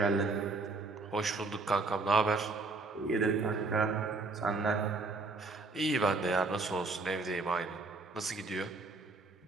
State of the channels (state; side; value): quieter; left; 3.6 dB